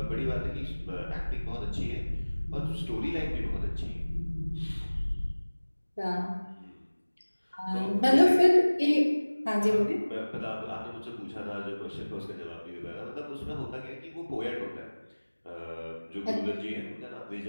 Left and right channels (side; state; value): both; inverted; correlation -1.00